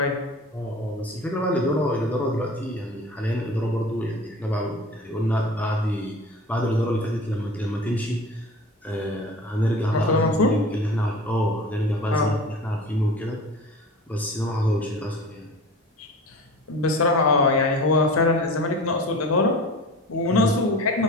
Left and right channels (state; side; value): normal; both; correlation 0.38